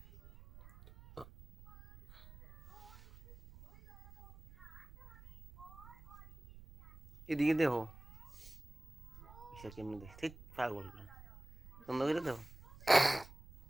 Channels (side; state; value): right; noise; rumble, 19 dB below the sound